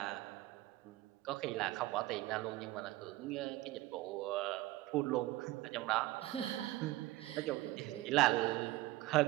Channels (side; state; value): left; quieter; 17.8 dB